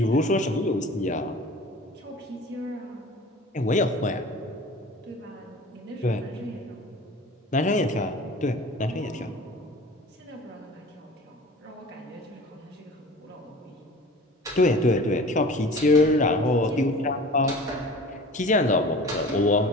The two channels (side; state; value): both; normal; correlation 0.41